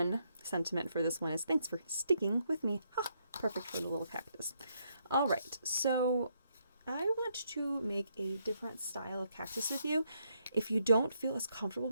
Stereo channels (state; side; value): inverted; both; correlation -0.76